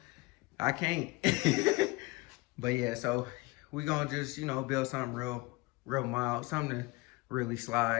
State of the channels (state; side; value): quieter; right; 23.2 dB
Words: I can't. But yeah, so we gonna just build something real mild, something to really